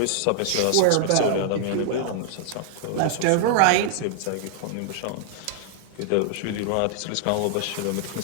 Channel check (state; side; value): different; both; correlation -0.01